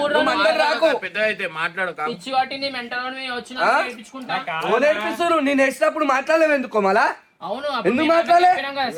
3 రోజులు మధ్యలో రాకు. పెద్ద అయితే మాట్లాడు పిచ్చి పట్టింది మెంటల్ వచ్చిన నేర్పించుకుంటా. ఓ నేర్పిస్తారు నేను వేసినప్పుడు మాట్లాడలేవు ఎందుకో మళ్ళా అవును ఎందుకు మాట్లాడలే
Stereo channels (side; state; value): both; identical; correlation 1.00